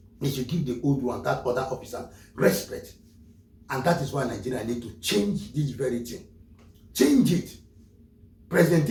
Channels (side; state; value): both; identical; correlation 1.00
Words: They should give the old one, that other officer, respect. And that is why Nigeria need to change this very thing. Change it. President